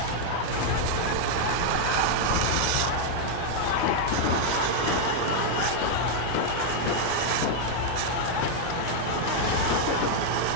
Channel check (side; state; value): both; different; correlation 0.00